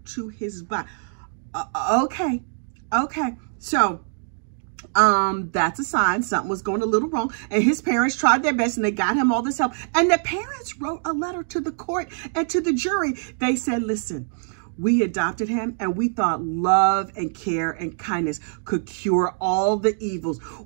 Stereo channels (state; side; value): silent; left; digital silence